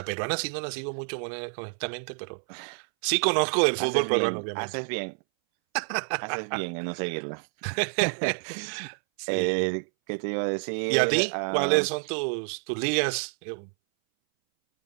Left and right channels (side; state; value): left; silent; 59 dB below the other